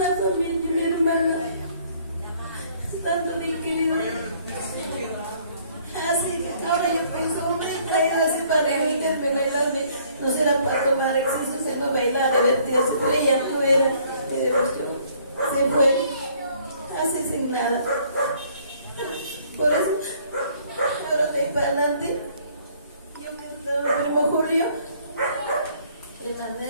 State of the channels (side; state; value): both; inverted; correlation -0.61